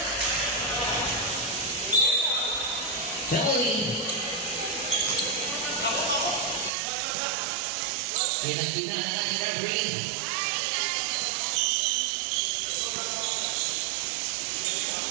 Penalty. Pinagtigan na ng referee.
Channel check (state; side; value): drops out; left; at 6.7 s